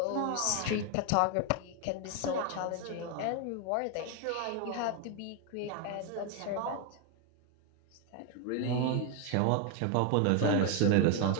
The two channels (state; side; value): different; both; correlation 0.01